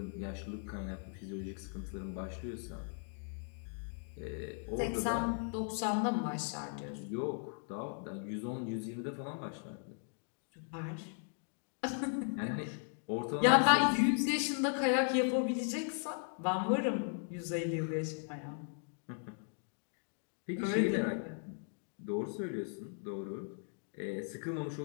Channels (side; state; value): right; silent; 53 dB below the other